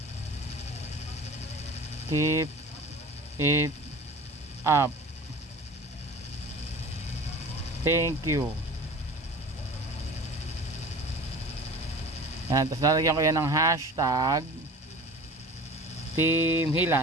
keep it up, thank you. Yan, tapos lalagyan ko yan ng hashtag Team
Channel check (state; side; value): normal; both; correlation 0.39